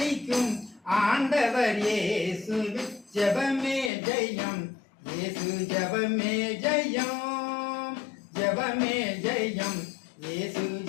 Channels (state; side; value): drops out; right; at 3.9 s